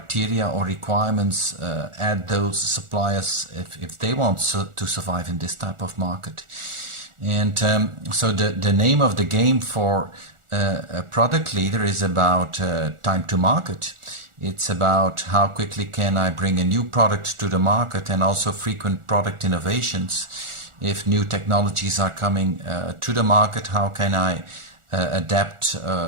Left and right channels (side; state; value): left; late; 1.4 ms